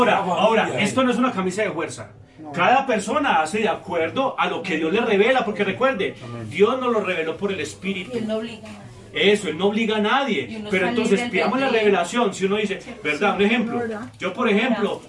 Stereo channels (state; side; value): identical; both; correlation 1.00